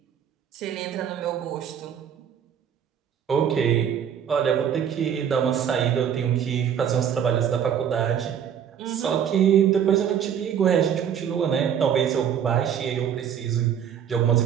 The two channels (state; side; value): quieter; left; 8.7 dB